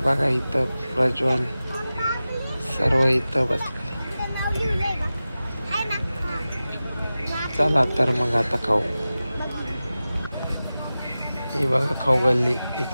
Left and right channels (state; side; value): inverted; both; correlation -0.95